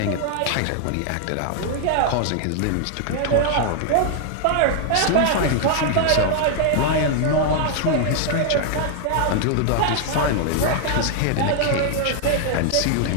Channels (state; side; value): different; both; correlation 0.00